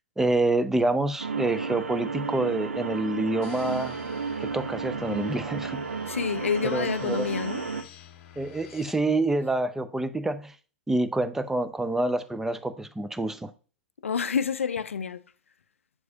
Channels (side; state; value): both; normal; correlation 0.46